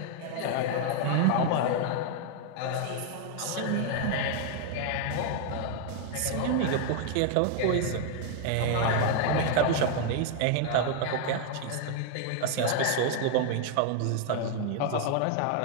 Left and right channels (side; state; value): both; different; correlation 0.00